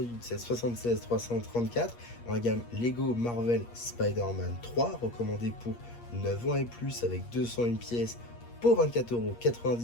c'est 76-334 dans la gamme Lego Marvel Spider-Man 3, recommandé pour 9 ans et plus avec 201 pièces pour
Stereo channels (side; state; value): right; late; 8.5 ms